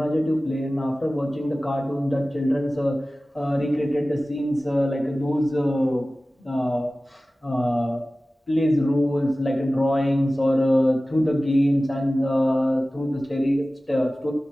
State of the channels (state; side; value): normal; both; correlation 0.96